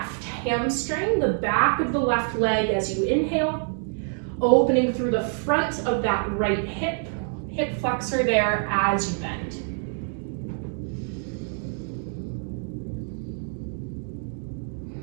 hamstring, the back of the left leg as you inhale. Opening through the front of that right hip flexor there as you bend.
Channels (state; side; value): silent; left; 59 dB below the other